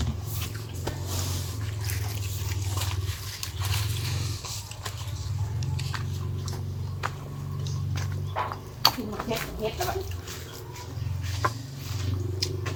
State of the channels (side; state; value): both; identical; correlation 1.00